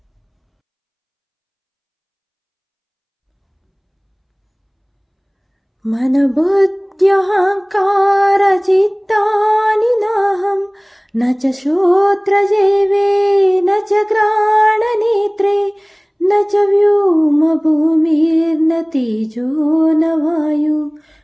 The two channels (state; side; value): identical; both; correlation 1.00